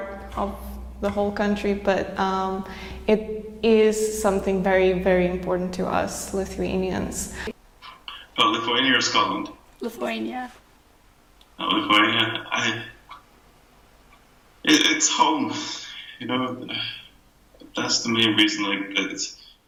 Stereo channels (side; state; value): both; identical; correlation 1.00